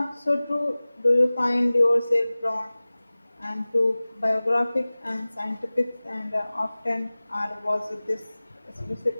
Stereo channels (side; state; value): both; inverted; correlation -0.99